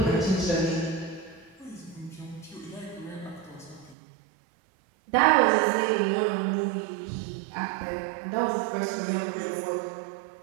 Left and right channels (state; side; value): drops out; left; at 4.0 s